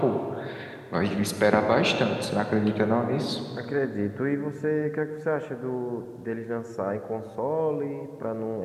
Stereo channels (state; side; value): identical; both; correlation 1.00